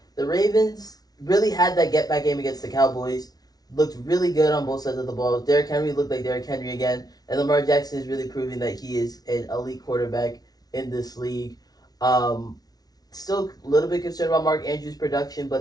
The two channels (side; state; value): right; late; 0.19 ms